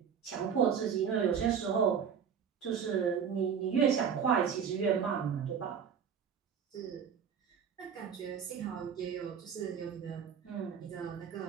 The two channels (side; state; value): left; quieter; 7.3 dB